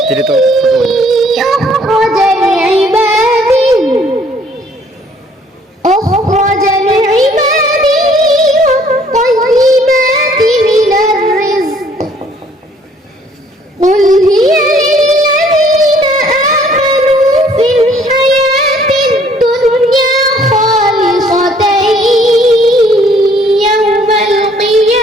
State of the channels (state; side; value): normal; both; correlation 0.61